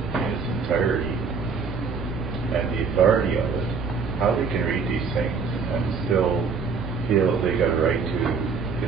in its entirety and the authority of it, how they can read these things and still feel that they got a right to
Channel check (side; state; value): left; quieter; 5.3 dB